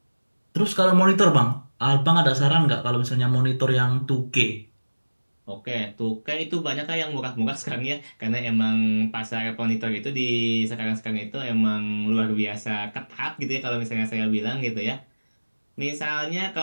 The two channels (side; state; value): both; inverted; correlation -1.00